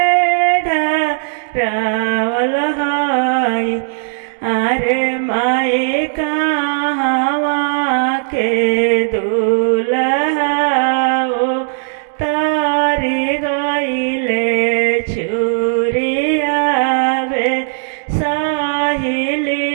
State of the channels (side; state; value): left; silent; digital silence